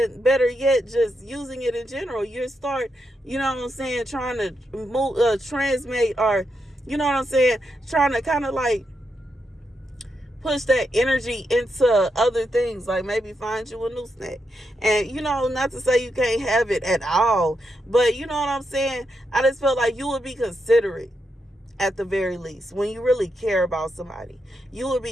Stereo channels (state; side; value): normal; both; correlation 0.83